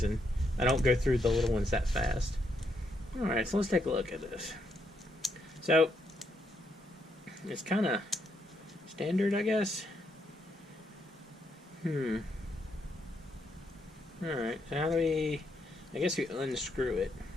and I don't go through the little ones that fast. Alright, so let's take a look at this. So it's kind of standard, I guess. Alright, so how do we... I guess we unscrew it.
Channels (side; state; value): both; normal; correlation 0.77